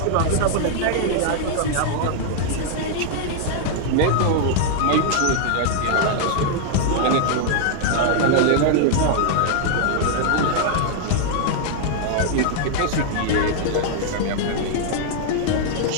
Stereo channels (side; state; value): both; different; correlation -0.01